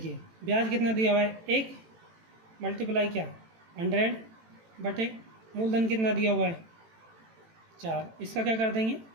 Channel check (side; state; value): left; late; 18 ms